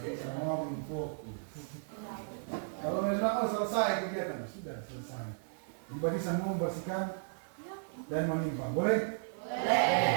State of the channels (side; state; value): left; silent; digital silence